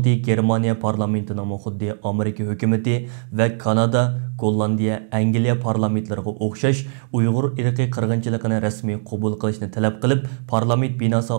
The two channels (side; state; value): left; silent; digital silence